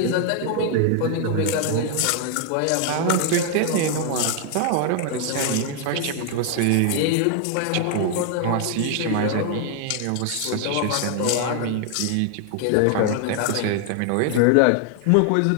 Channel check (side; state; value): both; different; correlation 0.00